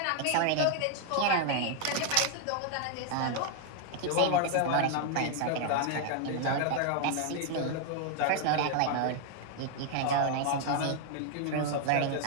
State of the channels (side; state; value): both; different; correlation 0.00